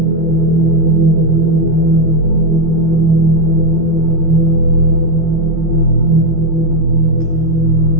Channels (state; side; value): late; left; 12 ms